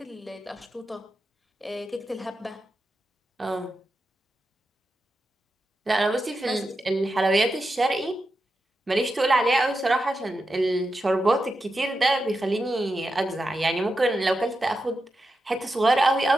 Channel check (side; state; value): both; normal; correlation 0.89